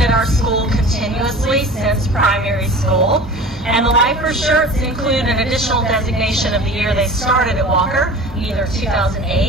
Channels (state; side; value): normal; both; correlation 0.39